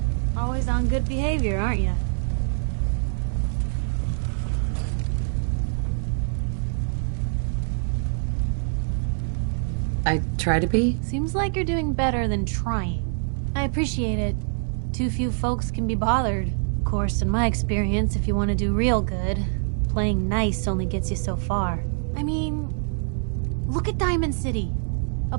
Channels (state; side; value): silent; left; 62 dB below the other